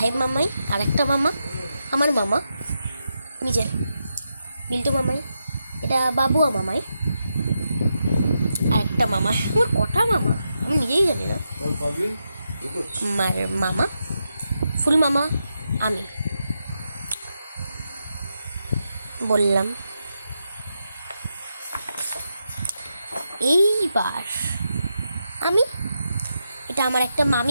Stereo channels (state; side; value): inverted; both; correlation -0.85